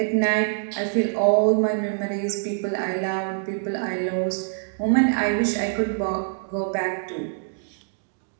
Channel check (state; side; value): silent; left; digital silence